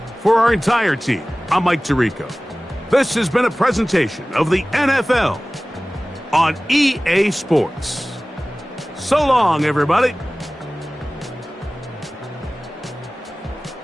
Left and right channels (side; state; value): both; normal; correlation 0.98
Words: For our entire team, I'm Mike Tirico. This has been a presentation of the NFL on EA Sports. So long, everybody.